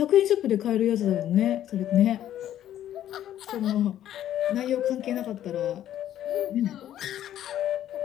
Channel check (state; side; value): quieter; right; 11.7 dB